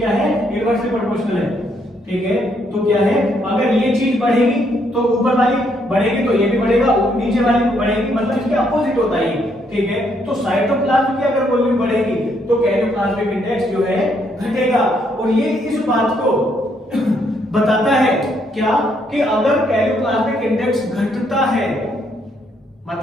है, इनवर्सली प्रोपोर्शनल है। ठीक है, तो क्या है, अगर ये चीज बढ़ेगी तो ऊपर वाली बढ़ेगी तो ये भी बढ़ेगा, नीचे वाली बढ़ेगी, मतलब इसके अपोजिट होता है। ठीक है, तो साइटोप्लाज्म की अगर वॉल्यूम बढ़ेगी तो कैरियोप्लाज्मिक इंडेक्स जो है घटेगा। और ये इस बात को बताता है क्या कि अगर कैरियोप्लाज्मिक इंडेक्स घटता है,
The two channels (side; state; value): both; normal; correlation 0.72